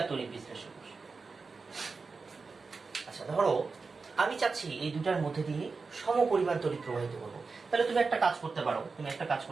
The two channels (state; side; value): quieter; left; 4.5 dB